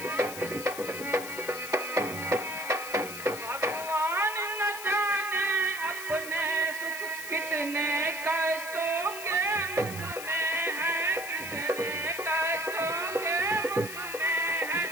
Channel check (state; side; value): noise; left; hiss, 10 dB below the sound